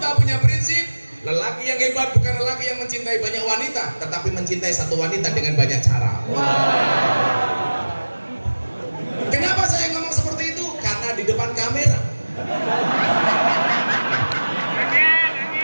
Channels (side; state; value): both; inverted; correlation -1.00